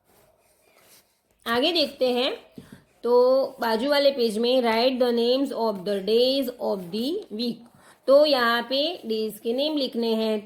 आगे देखते हैं। तो बाजू वाले पेज में write the names of the days of the week. तो यहाँ पे डेज के नेम लिखने हैं।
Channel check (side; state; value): both; identical; correlation 1.00